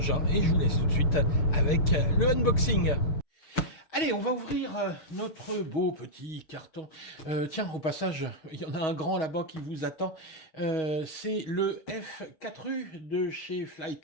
et je vous laisse tout de suite avec le unboxing. Allez, on va ouvrir notre beau petit carton. Tiens, au passage, il y en a un grand là-bas qui vous attend. C'est le F4U de chez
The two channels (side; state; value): right; late; 6.3 ms